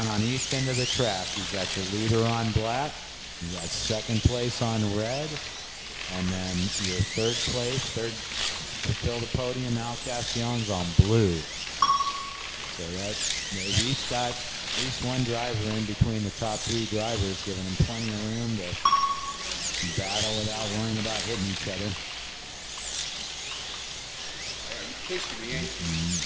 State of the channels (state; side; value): identical; both; correlation 1.00